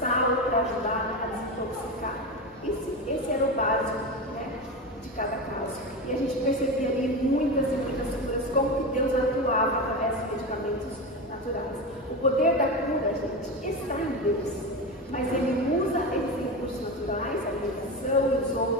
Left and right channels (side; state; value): both; normal; correlation 0.20